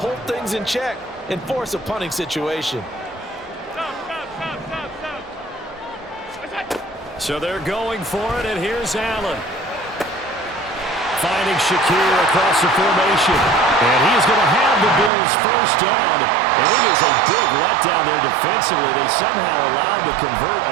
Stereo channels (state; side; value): drops out; left; at 15.1 s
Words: things in check and force a punting situation. So they're going for it, and here's Allen. Finding Shakir across the formation. And he is going to have the Bills' 1st down. And it is a big letdown there defensively. They somehow allowed to convert